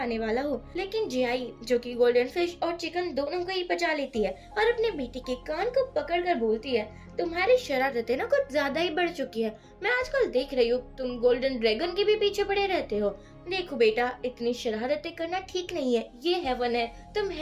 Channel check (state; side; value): identical; both; correlation 1.00